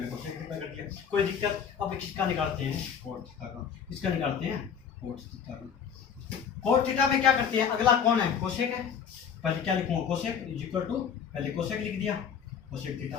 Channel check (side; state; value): right; quieter; 7.4 dB